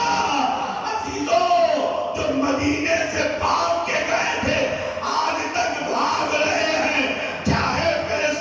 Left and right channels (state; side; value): identical; both; correlation 1.00